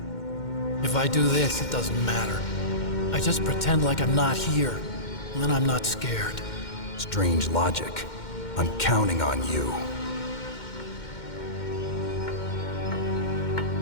If I do this, it doesn't matter. I just pretend like I'm not here, and then I'm not scared. Strange logic. I'm counting on you.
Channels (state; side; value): late; right; 2.1 ms